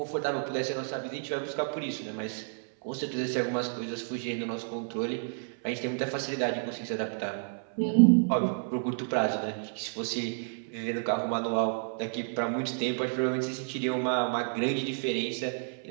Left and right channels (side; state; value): left; silent; 57 dB below the other